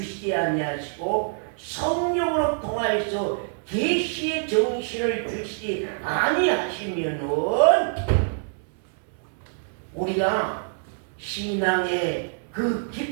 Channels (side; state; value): left; silent; 61 dB below the other